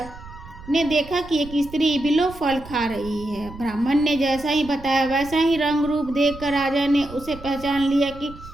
ने देखा कि एक स्त्री बिल्व फल खा रही है। ब्राह्मण ने जैसा ही बताया वैसा ही रंग रूप देखकर राजा ने उसे पहचान लिया कि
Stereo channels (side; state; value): right; noise; rumble, 16 dB below the sound